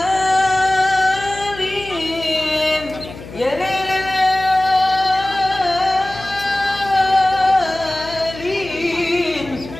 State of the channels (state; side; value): noise; left; hum, 15 dB below the sound